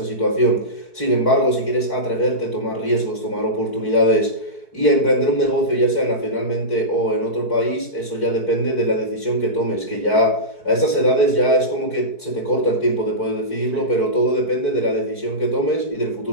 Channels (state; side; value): late; right; 4.6 ms